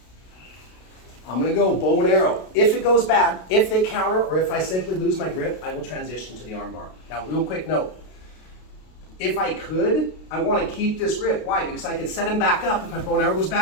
I'm going to go bow and arrow. If it goes bad, if they counter, or if I simply lose my grip, I will transition to the armbar. Now, real quick note. If I could, I want to keep this grip. Why? Because I could set him back up. If my bow and arrow goes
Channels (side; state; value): right; late; 32 ms